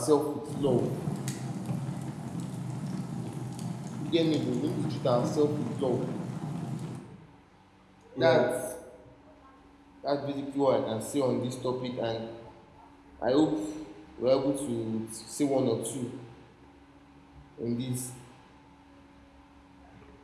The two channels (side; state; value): both; identical; correlation 1.00